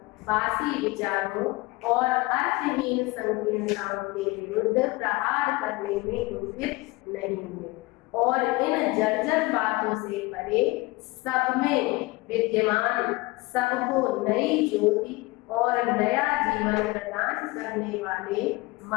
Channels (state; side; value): quieter; right; 22.5 dB